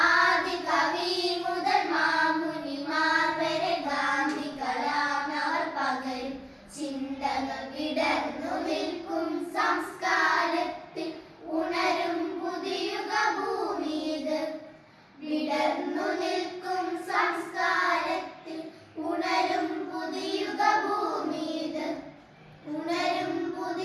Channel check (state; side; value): identical; both; correlation 1.00